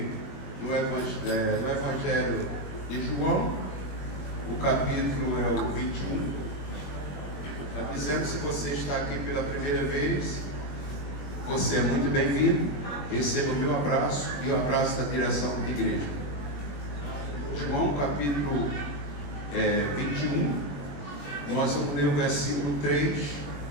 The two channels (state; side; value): late; right; 21 ms